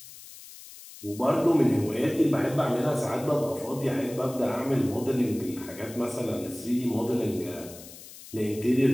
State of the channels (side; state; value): left; noise; hiss, 17 dB below the sound